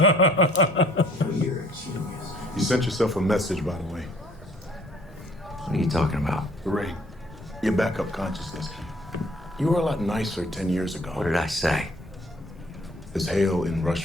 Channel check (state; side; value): normal; both; correlation 0.59